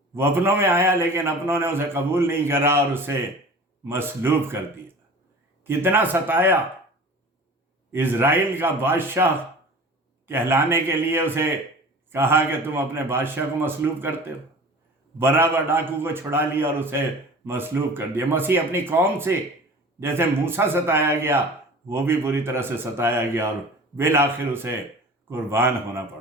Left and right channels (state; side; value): normal; both; correlation 0.40